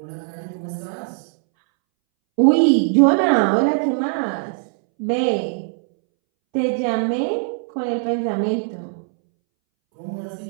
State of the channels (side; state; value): left; silent; 64 dB below the other